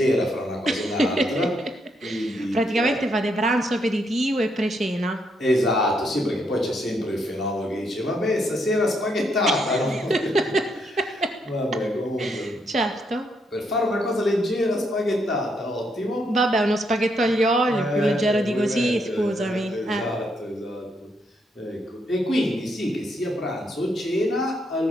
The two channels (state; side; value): normal; both; correlation 0.76